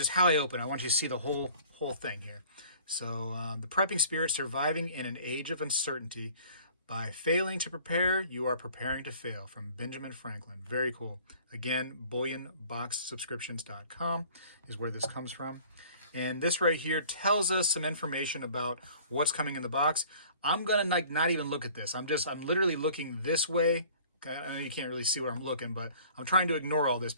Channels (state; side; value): inverted; both; correlation -0.51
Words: how I open. I want you to see the whole thing here. So the prepping spirit, surviving in an age of uncertainty. By failing to prepare, you are preparing to fail, from Benjamin Franklin. Very cool. Again, bullionboxsubscriptions.com is where this comes from. And this right here tells us some information about what's coming in the box. I'm going to not even look at this. I'm literally looking this way. I know you can't really see where I'm looking, but I'm trying to ignore all this